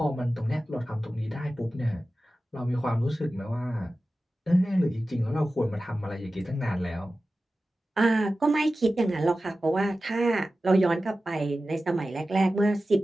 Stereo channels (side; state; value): both; normal; correlation 0.95